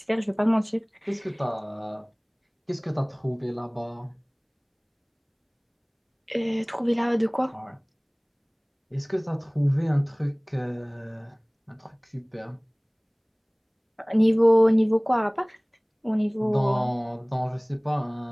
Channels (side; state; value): both; identical; correlation 1.00